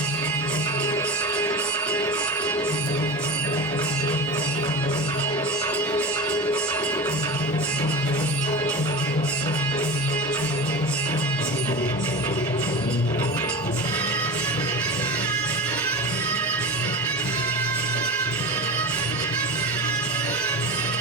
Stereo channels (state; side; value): normal; both; correlation 0.27